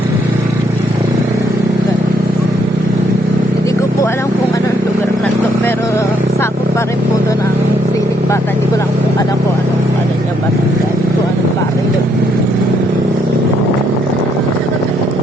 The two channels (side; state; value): both; normal; correlation 0.71